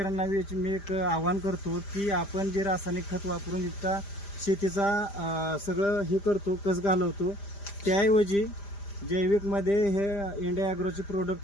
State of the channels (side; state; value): right; late; 5.0 ms